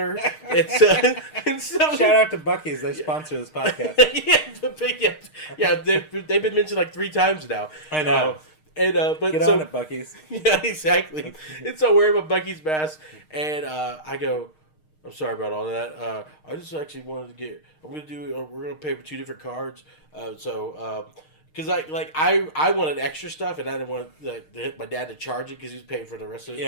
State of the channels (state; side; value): late; right; 6.5 ms